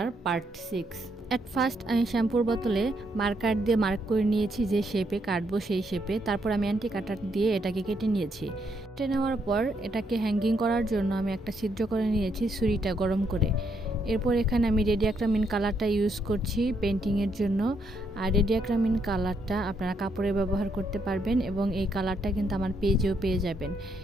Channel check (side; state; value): both; normal; correlation 0.75